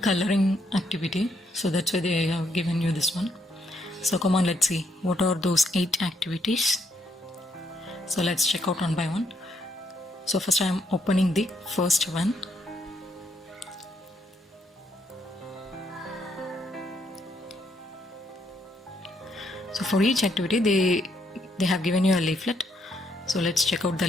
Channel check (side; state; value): both; normal; correlation 0.74